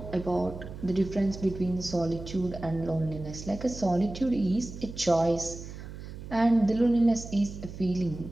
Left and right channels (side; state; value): right; noise; hum, 12 dB below the sound